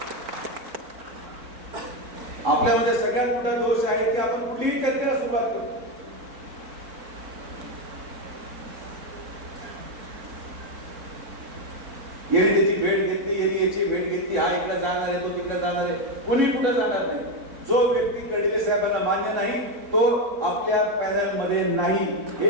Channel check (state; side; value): late; left; 3.7 ms